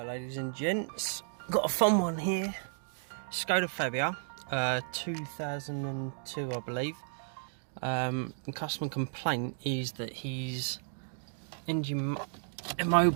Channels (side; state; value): left; silent; digital silence